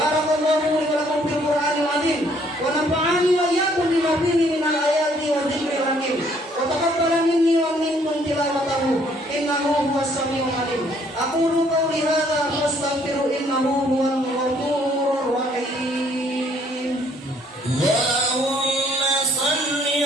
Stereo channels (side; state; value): both; normal; correlation 0.64